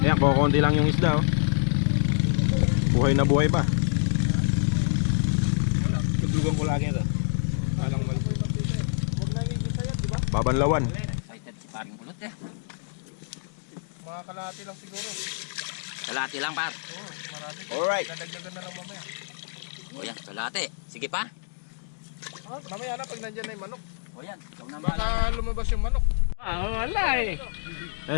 Ayan, kukunti lang yung isda oh. Buhay na buhay pa. Tuglugan ko lagi ito. Alang mali. Babanlawan. Excited si paring Kulot eh. Mga kalahati lang siguro. Kalahati lang par. Marami. Alright. Dadagdagan na lang mamaya. O yan, kalahati. Sige pa. Mamaya na pag nandyan na yung manok. O yan, ikaw na Baka lumabas yung manok. wala eh.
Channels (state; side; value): silent; right; digital silence